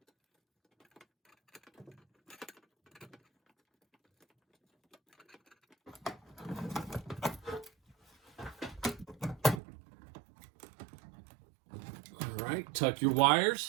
All right, tuck your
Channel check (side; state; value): left; drops out; at 9.6 s